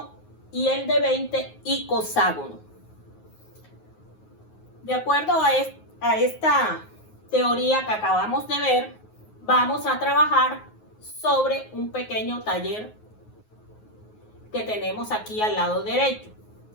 y el de 20 icoságono. De acuerdo a esta teoría que acabamos de ver, vamos a trabajar sobre un pequeño taller que tenemos aquí al lado derecho.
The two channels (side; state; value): right; late; 9.5 ms